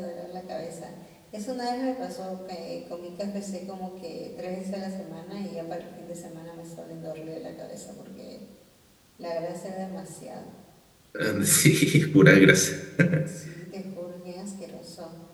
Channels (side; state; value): both; identical; correlation 1.00